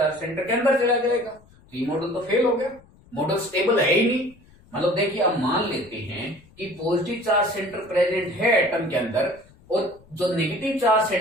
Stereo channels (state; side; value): noise; left; rumble, 27 dB below the sound